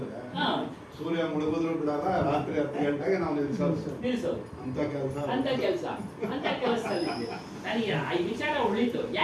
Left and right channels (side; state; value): both; identical; correlation 1.00